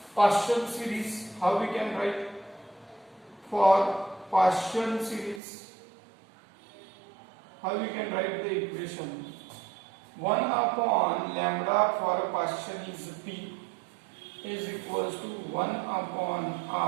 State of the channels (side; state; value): left; drops out; at 5.4 s